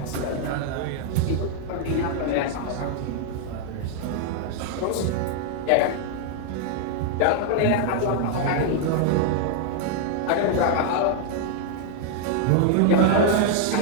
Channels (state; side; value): different; both; correlation 0.00